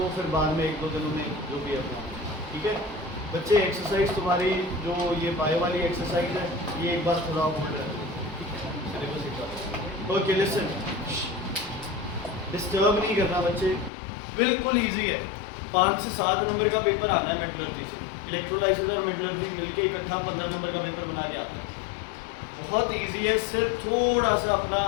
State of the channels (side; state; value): right; drops out; at 13.9 s